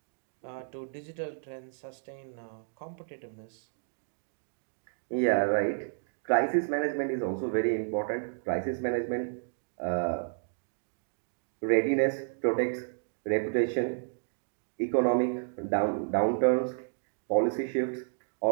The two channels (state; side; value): silent; left; digital silence